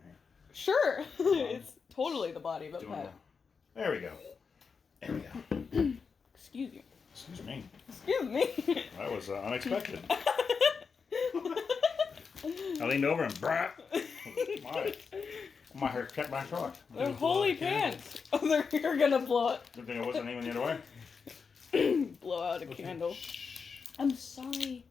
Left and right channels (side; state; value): right; quieter; 5.5 dB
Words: here. Sure, it's totally the body of a Doing pet. that. There we go. There we go. Excuse you. Excuse me. Excuse me. That was unexpected. I leaned over and brap. My hair kept my truck. They're holy pants. Oh, you're gonna blow it. Good thing I wasn't even the other way. Blow out a candle. Shh. I'm sorry.